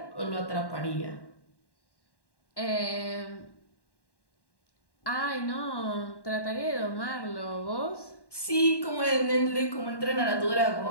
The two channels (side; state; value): right; late; 1.1 ms